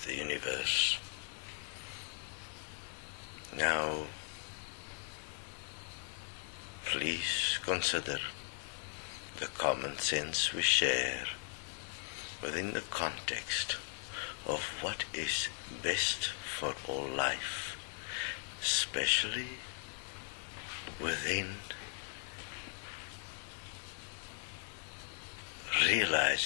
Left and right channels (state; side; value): silent; right; 52 dB below the other